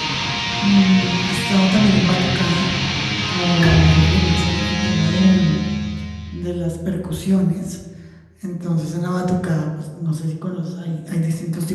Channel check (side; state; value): both; identical; correlation 1.00